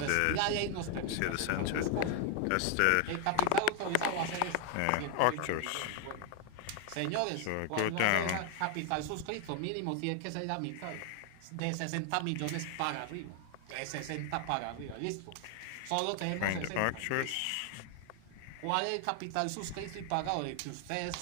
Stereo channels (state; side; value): different; both; correlation 0.00